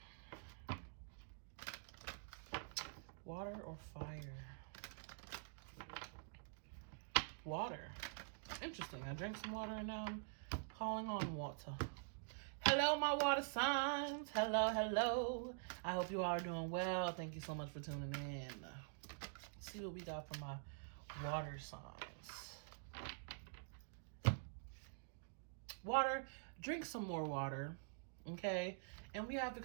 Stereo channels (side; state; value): left; silent; digital silence